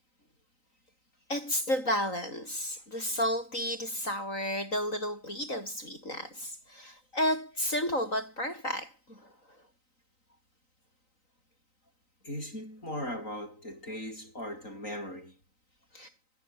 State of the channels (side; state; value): right; late; 3.9 ms